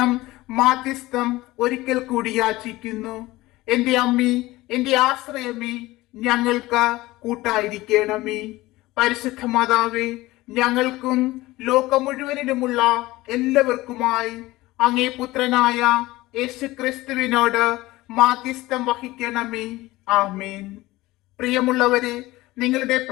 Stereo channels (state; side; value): quieter; right; 18.8 dB